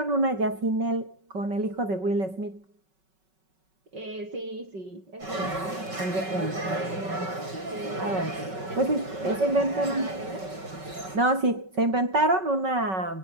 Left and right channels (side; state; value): left; late; 5.3 ms